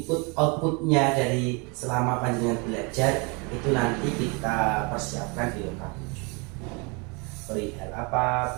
outputnya dari selama panjenengan belajar itu nanti kita persiapkan di lokasi. Perihal apa?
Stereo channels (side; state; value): left; quieter; 30.8 dB